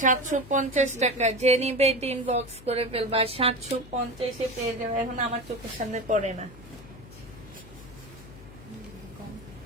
750 টাকা। যে নিবে ইনবক্স করে ফেলবা, 750 পেয়ে যাবে। এখন আমার চোখের সামনে পড়ে না।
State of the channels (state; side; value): noise; left; hum, 18 dB below the sound